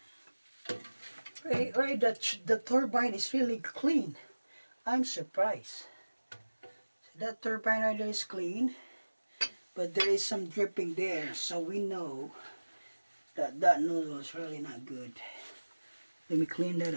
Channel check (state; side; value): inverted; both; correlation -1.00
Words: Right, the turbine is really clean. I'm surprised. That turbine right there is clean, but there is some dripping there, so we know that that nozzle is really not good. Let me clean that